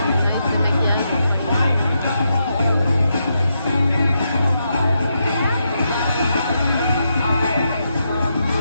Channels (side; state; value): both; inverted; correlation -0.82